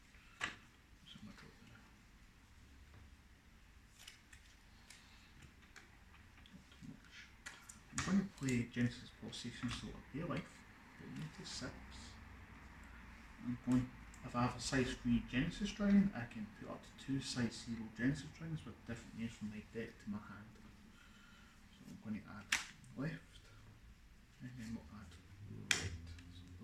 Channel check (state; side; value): identical; both; correlation 1.00